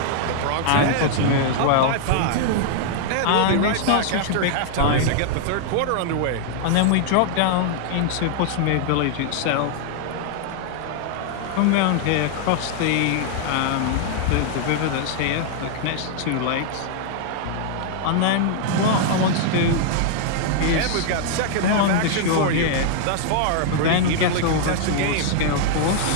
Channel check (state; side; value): different; both; correlation -0.01